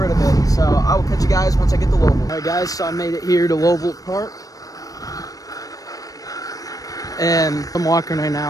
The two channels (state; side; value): late; right; 0.17 ms